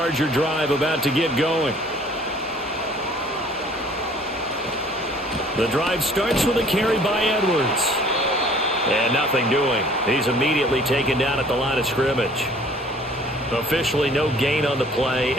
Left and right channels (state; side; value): normal; both; correlation 0.54